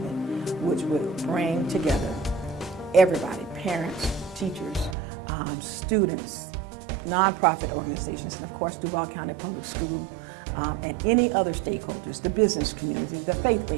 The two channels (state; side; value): drops out; left; at 5.0 s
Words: which would bring together everybody, parents, teachers, students, nonprofit organizations, and of course Duval County Public School, and any other stakeholders, the business community, the